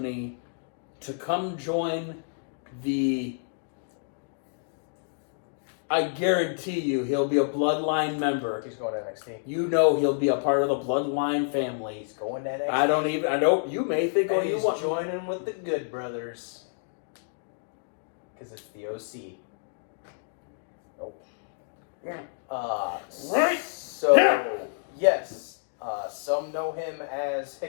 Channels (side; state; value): right; silent; digital silence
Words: to come join the... I guarantee you he'll be a Bloodline member. He's going to NXT. You know he'll be a part of the Bloodline family. He's going to NXT. I know you may think, And you he's want... joining with the Good Brothers. Because it's the OC. Nope. Yeah. So, yes. Some know him as